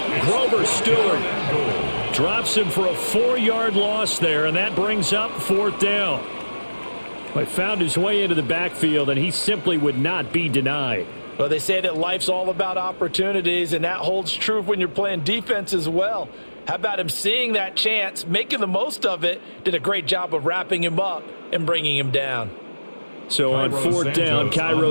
Grover Stewart drops him for a 4-yard loss there, and that brings up 4th down. He found his way into the backfield, and he simply would not be denied. Well, they say that life's all about opportunities, and that holds true when you're playing defense as well. How about him seeing that chance, making the most of it, did a great job of wrapping him up and bringing him down. So on 4th down,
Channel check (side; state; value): both; inverted; correlation -1.00